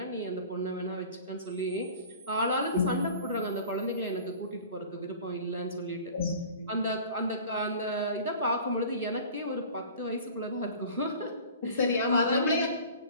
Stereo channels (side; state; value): both; inverted; correlation -0.43